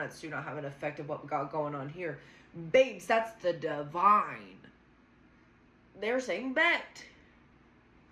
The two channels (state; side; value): identical; both; correlation 1.00